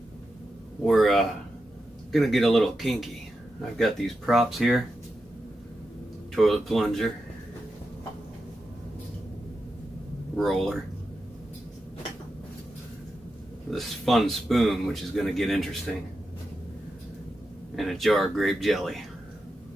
we're gonna get a little kinky. I've got these props here, toilet plunger, roller, this fun spoon, which is gonna get interesting, and a jar of grape jelly.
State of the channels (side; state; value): both; normal; correlation 0.89